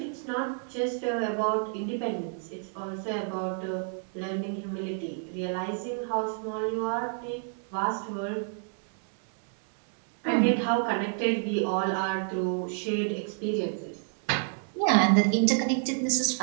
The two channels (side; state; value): left; silent; 58 dB below the other